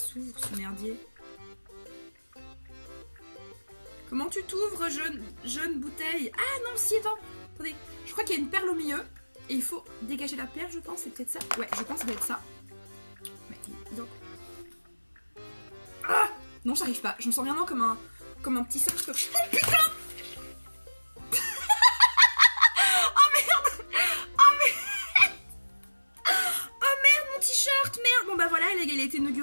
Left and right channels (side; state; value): both; inverted; correlation -1.00